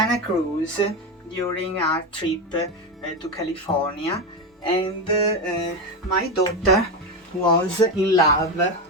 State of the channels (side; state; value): both; normal; correlation 0.14